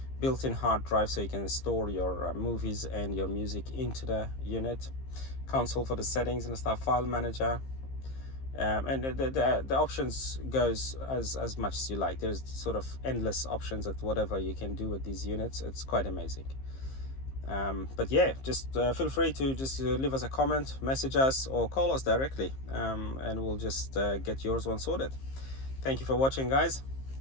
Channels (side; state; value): right; late; 15 ms